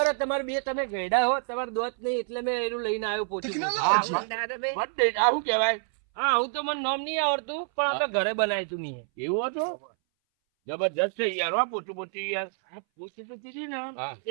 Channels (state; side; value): silent; left; 60 dB below the other